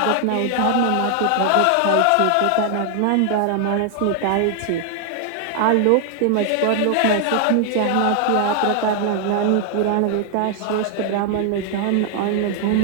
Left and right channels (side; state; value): both; different; correlation 0.00